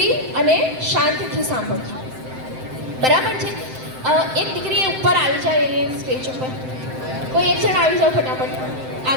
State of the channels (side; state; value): left; late; 7.8 ms